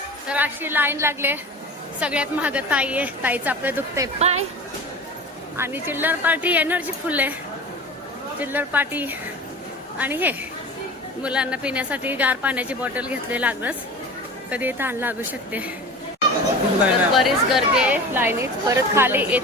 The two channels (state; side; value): normal; both; correlation 0.35